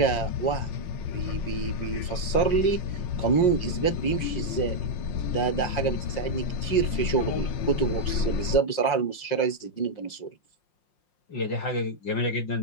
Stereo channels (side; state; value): right; late; 5.6 ms